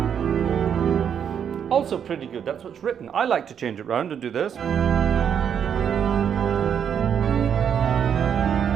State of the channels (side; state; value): left; quieter; 8.1 dB